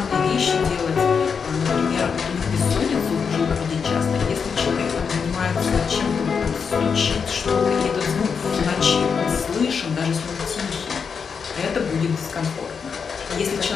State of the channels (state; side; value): quieter; right; 6.1 dB